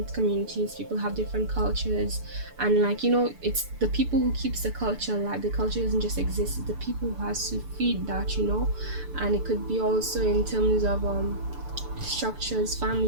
communities people have different cultures, and like it's the people who keeps the culture alive. The culture doesn't just exist, it's the people who has to feed that. And it could be also in terms of structures,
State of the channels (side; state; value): left; late; 6.9 ms